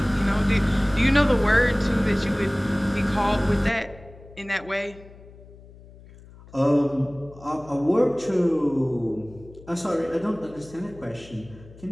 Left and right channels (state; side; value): noise; left; hum, 21 dB below the sound